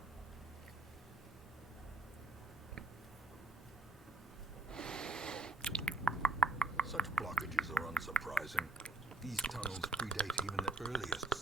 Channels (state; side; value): quieter; left; 3.2 dB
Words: Such blockages are unsurprising. These tunnels predate even the earliest